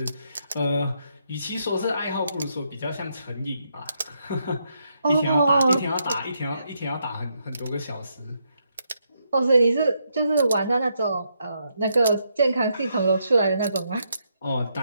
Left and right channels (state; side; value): inverted; both; correlation -0.78